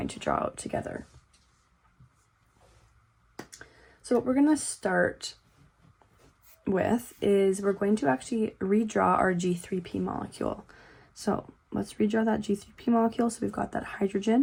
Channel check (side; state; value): both; identical; correlation 1.00